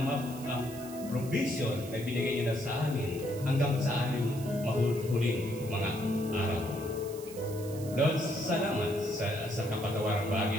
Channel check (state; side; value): noise; right; hiss, 16 dB below the sound